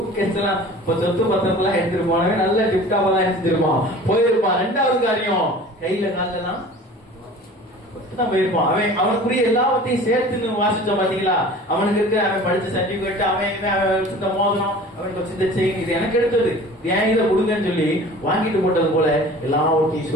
எல்லாம் சொத்து பத்திரத்தெல்லாம் எடுத்துட்டு போனவன் நல்ல டிப்டாவெல்லாம் எடுத்துருப்பான், போயிருப்பான். ரெண்டாவது காரியம், கையில காலெல்லாம் தான் போயிருப்பான். அவனுக்குரிய எல்லாத்தையும் சேர்த்து வாசிச்சோம் பாத்தீங்களா? அவனுக்கு இருக்க அவன் படிச்ச சர்டிபிகேட், அவன் மோதிரம், அவனுக்கு வச்சிருந்த செயின், இது எனக்கு எடுத்தது, ஏன் இதை கொடுங்கன்னு சொல்லி வாங்கிட்டு போட்டது போல எல்லாத்தையும்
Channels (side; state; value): both; normal; correlation 0.43